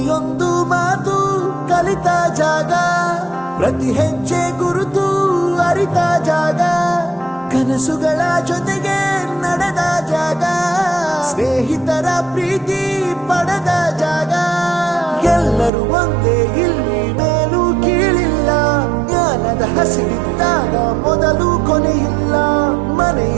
ಮಾತು ಕಲಿತ ಜಾಗ, ಪ್ರತಿ ಹೆಜ್ಜೆ ಗುರುತು ಅರಿತ ಜಾಗ, ಕನಸುಗಳ ಜೊತೆಗೆ ನಡೆದ ಜಾಗ, ಸ್ನೇಹಿತರ ಪ್ರೀತಿ ಪಡೆದ ಜಾಗ. ಎಲ್ಲರೂ ಒಂದೇ, ಇಲ್ಲಿ ಮೇಲೂ ಕೀಳಿಲ್ಲ, ಜ್ಞಾನದ ಹಸಿವಿದ್ದಾಗ ಮೊದಲು ಕೊನೆಯಿಲ್ಲ.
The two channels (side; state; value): left; drops out; at 15.7 s